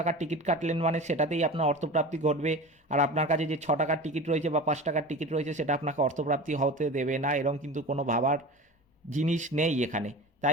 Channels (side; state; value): both; normal; correlation 0.33